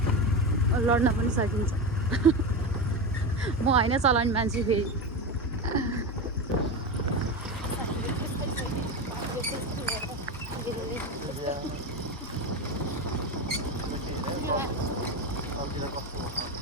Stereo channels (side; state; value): both; normal; correlation 0.20